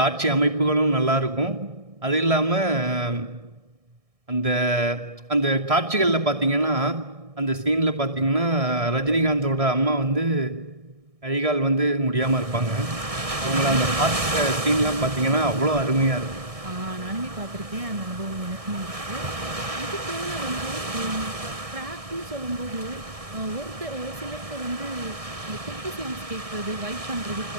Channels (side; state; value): left; late; 1.6 ms